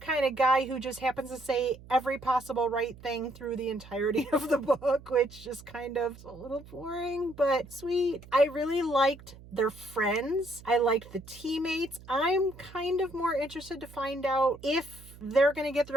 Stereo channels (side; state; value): right; noise; hum, 19 dB below the sound